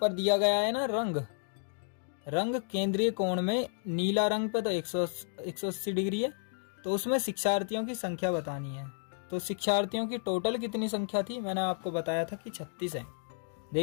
दिया गया है ना रंग केंद्रीय कोण में नीला रंग पे तो 180 डिग्री है, तो उसमें शिक्षार्थियों की संख्या बतानी है। तो शिक्षार्थियों की टोटल कितनी संख्या थी, मैंने आपको बताया था कि 36 है।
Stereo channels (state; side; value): silent; right; 56 dB below the other